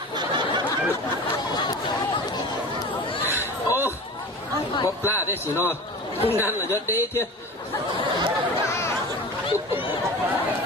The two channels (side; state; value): both; normal; correlation 0.34